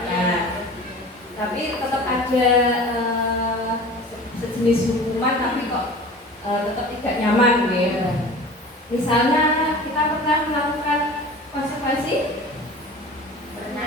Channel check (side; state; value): both; normal; correlation 0.39